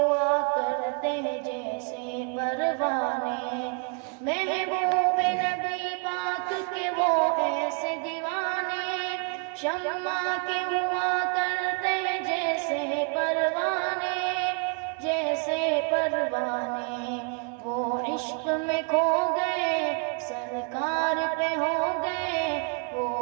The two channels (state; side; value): quieter; left; 37.3 dB